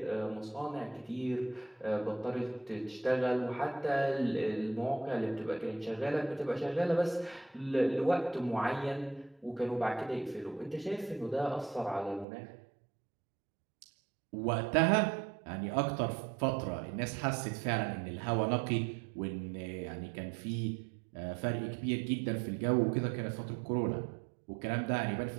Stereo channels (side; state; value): left; drops out; at 12.2 s